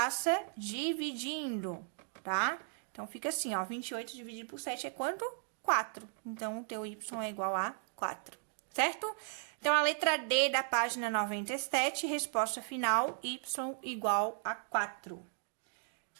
dividindo, tá? Então, fica assim, ó, 28 dividido por 7 é quanto? 4. Então, o teu y é igual a 4, certo? Então, a letra D da página 97, resposta final, y igual a 4.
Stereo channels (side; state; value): left; silent; 54 dB below the other